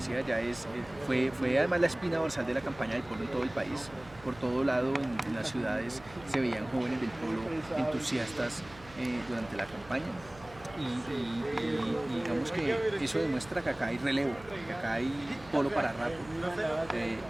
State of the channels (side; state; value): right; noise; hum, 20 dB below the sound